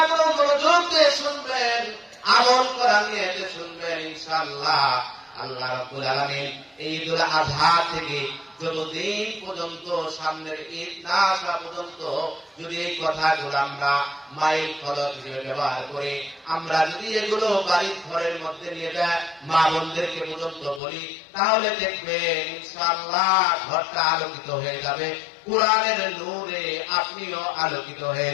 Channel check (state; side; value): drops out; right; at 20.8 s